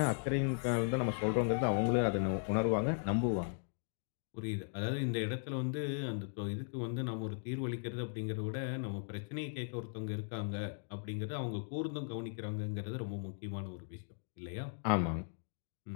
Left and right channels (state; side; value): silent; right; digital silence